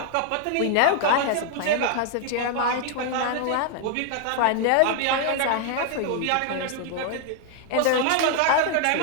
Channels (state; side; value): different; both; correlation 0.00